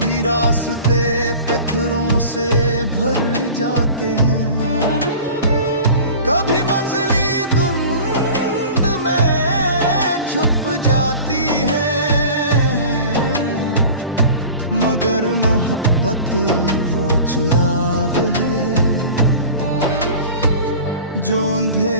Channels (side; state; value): both; inverted; correlation -0.39